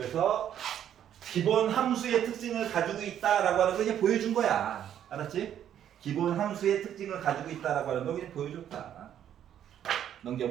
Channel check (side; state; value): left; quieter; 10.2 dB